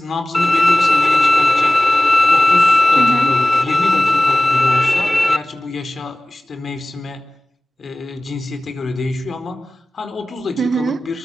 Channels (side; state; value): both; normal; correlation 0.97